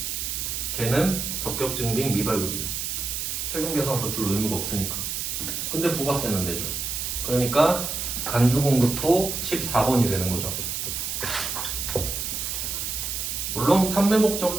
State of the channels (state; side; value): noise; right; hiss, 3 dB below the sound